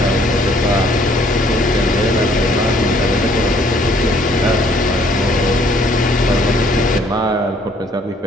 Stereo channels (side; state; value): both; normal; correlation 0.62